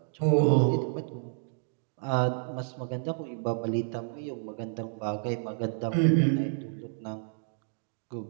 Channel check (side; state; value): left; silent; digital silence